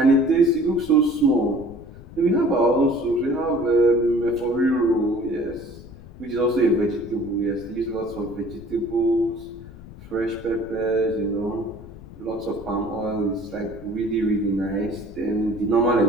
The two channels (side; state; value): left; noise; rumble, 17 dB below the sound